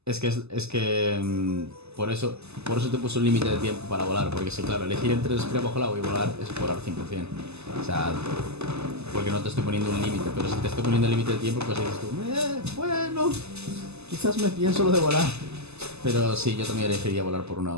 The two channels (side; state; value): left; late; 0.80 ms